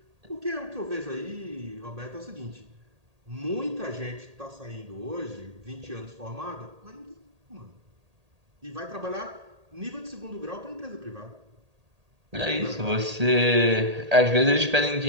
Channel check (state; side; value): late; left; 1.8 ms